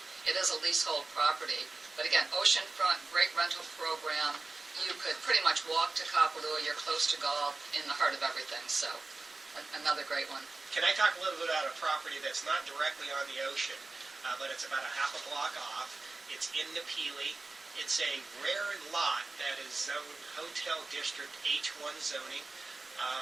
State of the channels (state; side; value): quieter; left; 3.4 dB